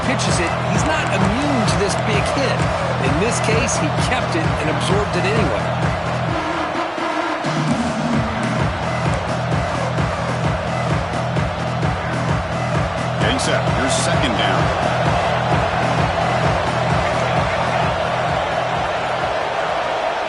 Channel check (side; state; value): both; identical; correlation 1.00